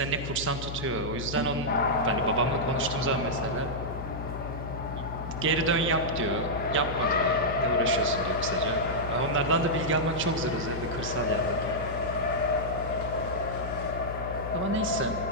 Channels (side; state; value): left; noise; hum, 7 dB below the sound